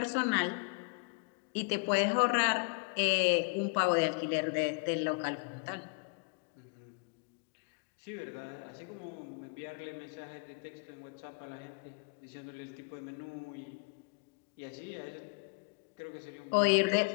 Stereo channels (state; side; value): quieter; right; 32.7 dB